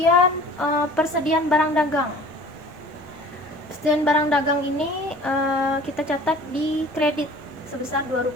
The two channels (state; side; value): normal; both; correlation 0.46